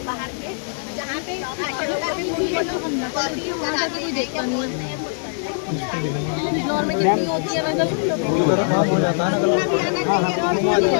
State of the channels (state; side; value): silent; right; digital silence